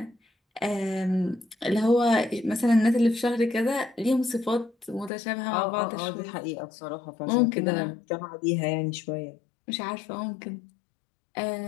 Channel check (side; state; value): right; drops out; at 5.1 s